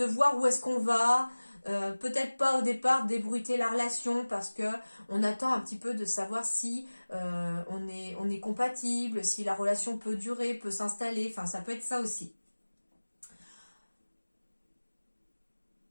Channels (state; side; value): inverted; both; correlation -1.00